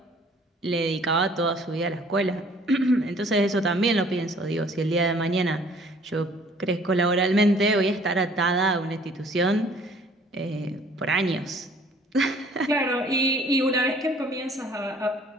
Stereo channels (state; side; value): normal; both; correlation 0.55